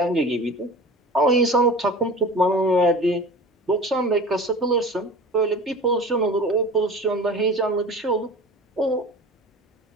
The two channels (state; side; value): normal; both; correlation 0.37